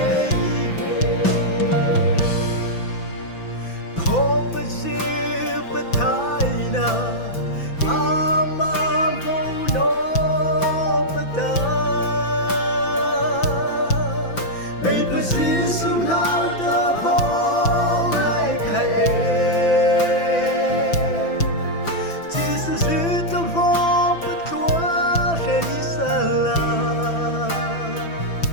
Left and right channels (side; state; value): right; late; 5.9 ms